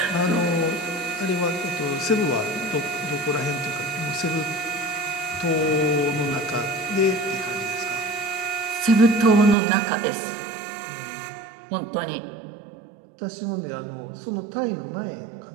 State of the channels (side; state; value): left; drops out; at 9.6 s